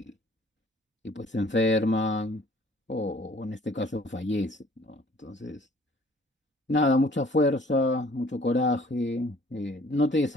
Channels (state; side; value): normal; both; correlation 0.55